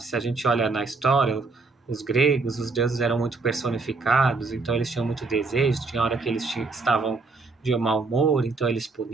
Se a gente olha na história, os gregos, os deuses eram muito personificados, então eles tinham muito desejo. Tinha hora que eles estavam de mau humor, então eles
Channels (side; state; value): left; quieter; 3.9 dB